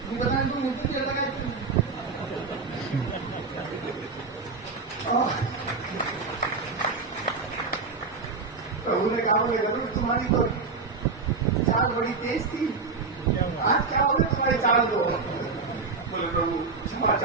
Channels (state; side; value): quieter; left; 4.4 dB